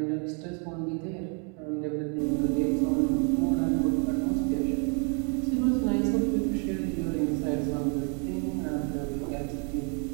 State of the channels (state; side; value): quieter; left; 38.7 dB